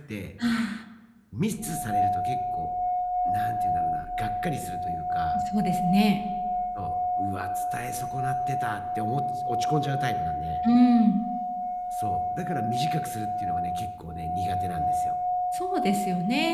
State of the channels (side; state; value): both; identical; correlation 1.00